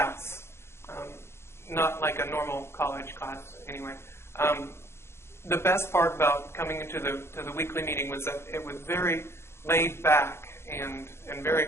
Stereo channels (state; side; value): late; right; 0.12 ms